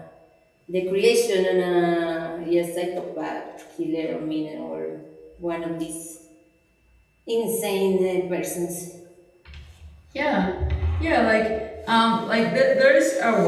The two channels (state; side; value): identical; both; correlation 1.00